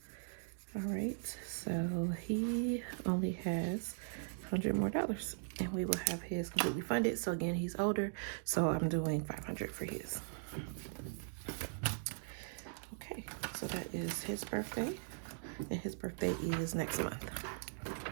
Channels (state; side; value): silent; left; digital silence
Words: All right, so he only has $100 more, and we will have his completely funded. So again, he's older, so I'm doing 500 for his. Okay, so that is his birthday, and his birthday is next month.